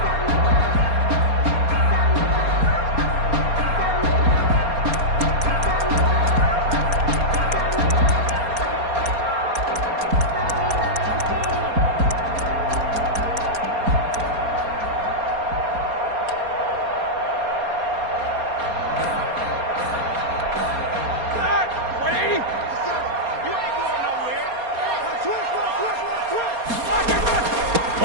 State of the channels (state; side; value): late; left; 4.3 ms